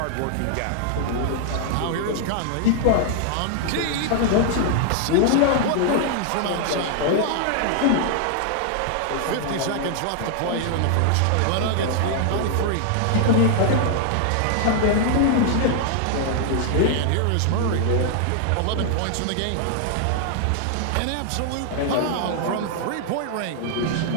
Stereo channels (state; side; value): different; both; correlation 0.00